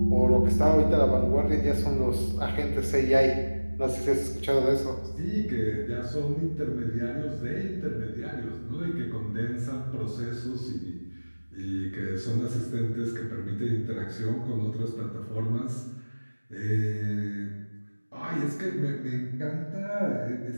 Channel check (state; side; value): inverted; both; correlation -1.00